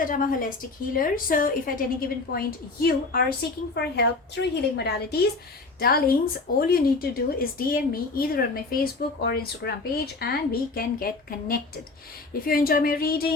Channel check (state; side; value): quieter; right; 3.7 dB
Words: I'm a holistic healer, so if at any given point you are seeking for help through healing modalities, darlings, all you need to do is DM me either on my Facebook or Instagram page and we can get connected. If you enjoy my